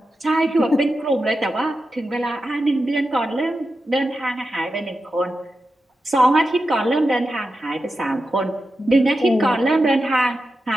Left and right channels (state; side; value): normal; both; correlation 0.90